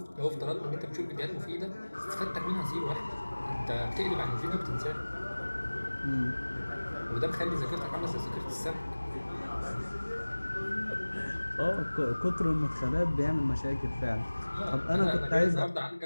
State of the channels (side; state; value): both; inverted; correlation -1.00